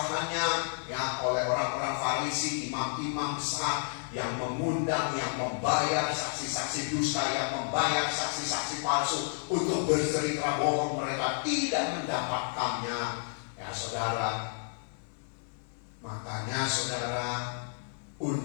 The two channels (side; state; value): right; silent; digital silence